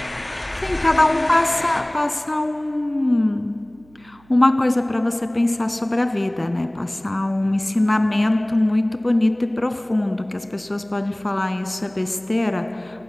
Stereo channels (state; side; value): noise; right; hum, 29 dB below the sound